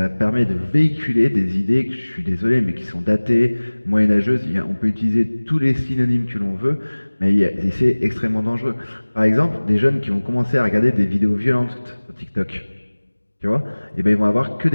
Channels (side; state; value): both; inverted; correlation -1.00